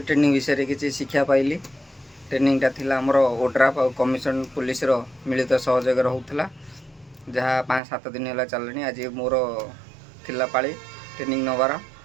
विषय किसी शिक्षा पाइली। ट्रेनिंगटा थिला हमर ओड्राफ और कमिशन पुलिस रो मिलित सहयोग होता जहाँ 5-7 दिन है चलनी। आज मोर थिला पाली ट्रेनिंग नवार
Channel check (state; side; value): drops out; left; at 7.8 s